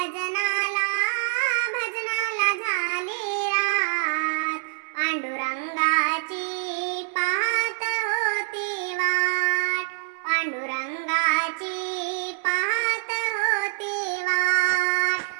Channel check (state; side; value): silent; left; 62 dB below the other